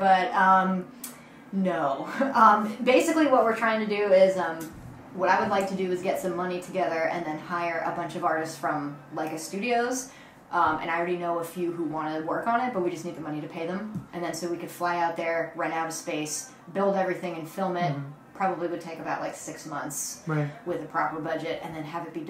no. Basically, what we're trying to do is what I would like to do is get some money together and then hire a bunch of artists from Leica Studios. And I already know a few who want to work on it, but we just need the money to pay them. And then so we could fly out there, rent out a space, build everything and film it. Probably would take about like 6 months with a proper budget, and then have it be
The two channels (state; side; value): identical; both; correlation 1.00